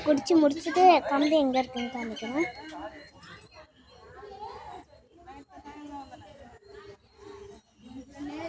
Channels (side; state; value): both; identical; correlation 1.00